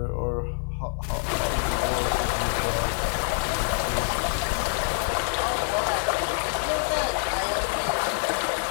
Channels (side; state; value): right; silent; 61 dB below the other